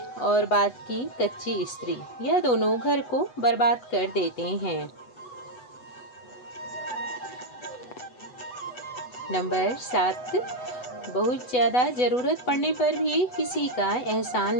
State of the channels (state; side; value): late; right; 8.1 ms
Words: बात की कच्ची स्त्री, यह दोनों घर को बर्बाद कर देते हैं। नंबर 7, बहुत ज़्यादा ज़रूरत पड़ने पर भी किसी का